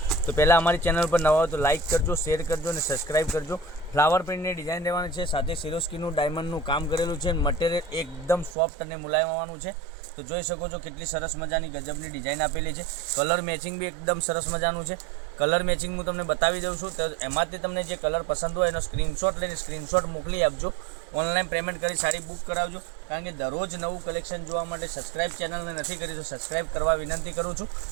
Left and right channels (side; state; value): left; drops out; at 8.6 s